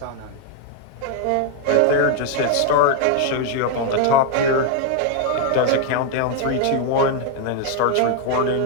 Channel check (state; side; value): different; both; correlation 0.01